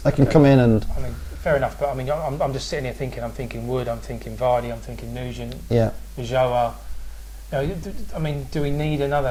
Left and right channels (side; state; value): both; identical; correlation 1.00